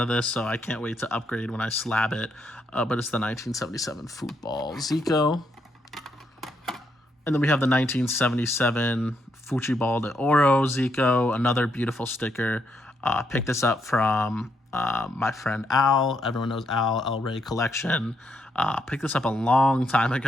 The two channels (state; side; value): normal; both; correlation 0.77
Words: of this, so I can't wait to upgrade when I slab it. But it's the 1977 Football Zico. And then we have the 1977 Futebol de Ouro Zico, another beautiful sticker. Picked this up from my friend Al. Everyone knows Al, El Rey Collection. Picked this up a long time